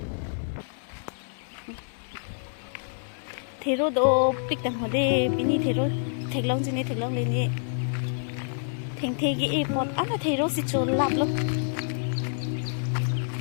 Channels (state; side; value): silent; right; digital silence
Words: thero do pik tang hode bini thero theklong jini theklong leni theng thegi e pot ana thero si chol lap lo